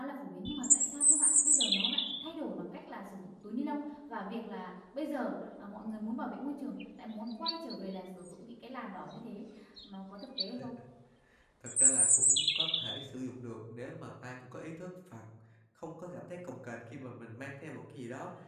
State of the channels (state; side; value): identical; both; correlation 1.00